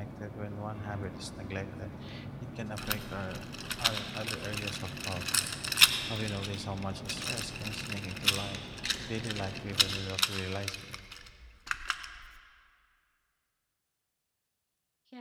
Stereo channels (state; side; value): identical; both; correlation 1.00